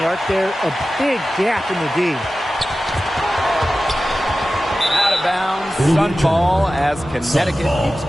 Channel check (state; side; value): normal; both; correlation 0.95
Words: the arc there. A big gap in the D. Bounds, Sun ball as Connecticut keeps